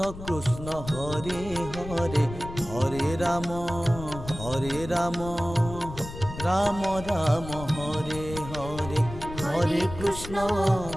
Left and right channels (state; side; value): noise; left; rumble, 11 dB below the sound